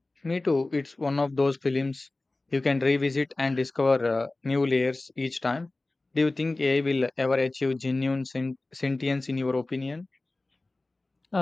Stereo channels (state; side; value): quieter; right; 3.0 dB